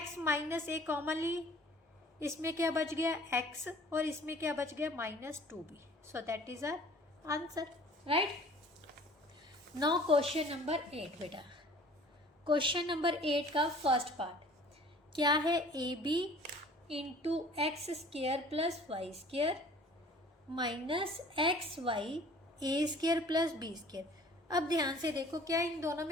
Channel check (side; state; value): both; normal; correlation 0.50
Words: माइनस a कॉमन ली, इसमें क्या बच गया x और इसमें क्या बच गया minus 2b, so that is our answer, right. Now question number 8 बेटा, क्वेश्चन नंबर 8 का फर्स्ट पार्ट क्या है, ab into x square plus y square minus x y a square plus b square. अब ध्यान से देखो, क्या इन दोनों